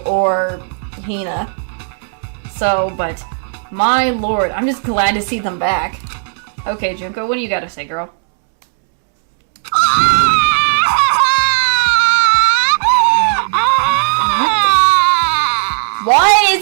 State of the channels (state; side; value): silent; left; digital silence